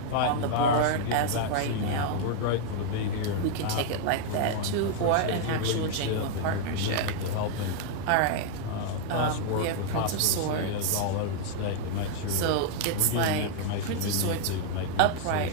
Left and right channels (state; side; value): different; both; correlation 0.00